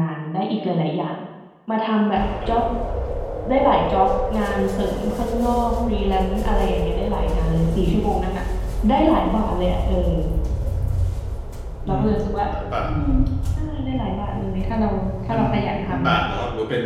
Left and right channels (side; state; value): both; identical; correlation 1.00